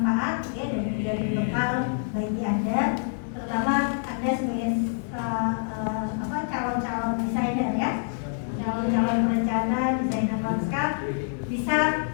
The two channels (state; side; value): silent; right; digital silence